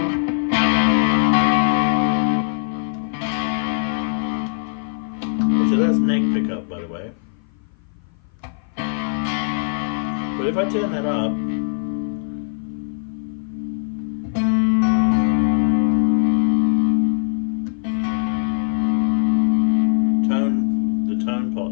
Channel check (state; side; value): silent; right; 56 dB below the other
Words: So that's neck pickup, by the way. But if I turn that up,